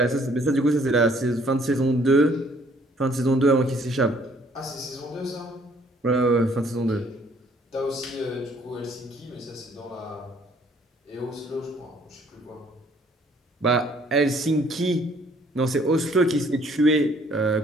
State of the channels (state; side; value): normal; both; correlation 0.61